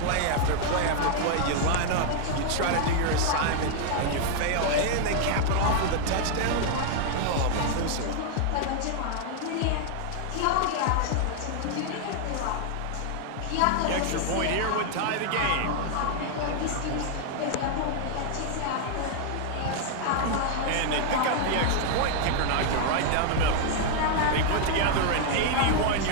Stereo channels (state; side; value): different; both; correlation 0.00